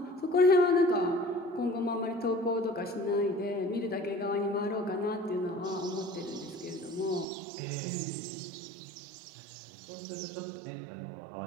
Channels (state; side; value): drops out; left; at 7.2 s